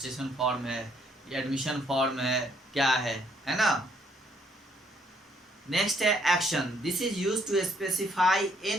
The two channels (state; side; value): normal; both; correlation 0.68